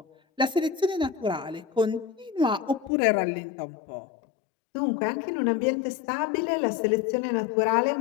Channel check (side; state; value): right; drops out; at 2.9 s